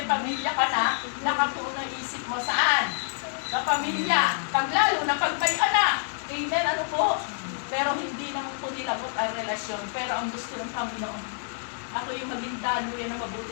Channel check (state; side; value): silent; right; 60 dB below the other